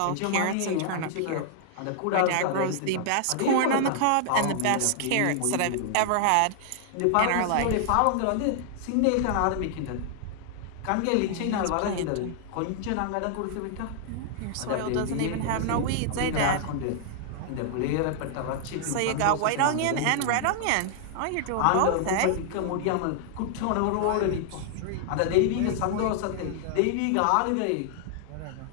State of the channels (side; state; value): both; different; correlation -0.01